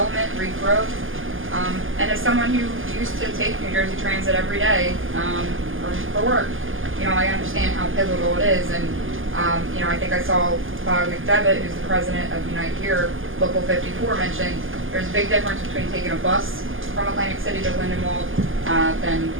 regrowth. And as someone who used to take New Jersey Transit every day for work, I understand how pivotal it is. And I think I saw Bob McDevitt, who's the president of Unite Here, Local 54, mention there's a big difference between taking a bus from Atlantic City to Lindenwold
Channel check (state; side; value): late; left; 0.58 ms